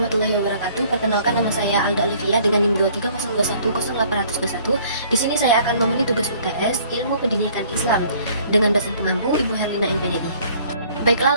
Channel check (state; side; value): inverted; both; correlation -0.57